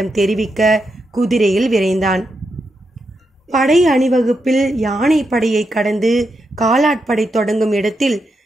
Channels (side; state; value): both; normal; correlation 0.84